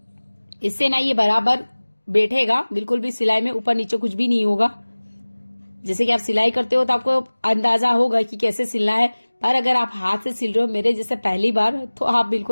इससे ना ये बराबर बैठेगा, बिल्कुल भी सिलाई में ऊपर नीचे कुछ भी नहीं होगा। जैसे कि आप सिलाई करते हो तो आपको अंदाजा होगा कि कैसे सिलना है, पर अगर आप हाथ से सिल रहे हो मेरे जैसे पहली बार, तो आप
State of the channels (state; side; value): inverted; both; correlation -1.00